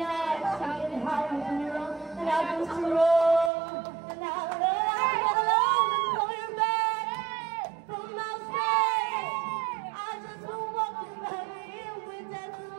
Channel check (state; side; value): drops out; left; at 3.5 s